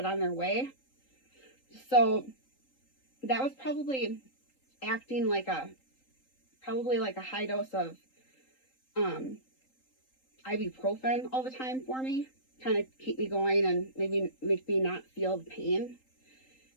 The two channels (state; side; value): late; right; 3.8 ms